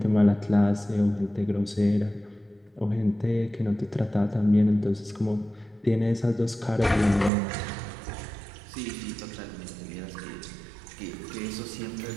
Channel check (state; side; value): drops out; left; at 7.3 s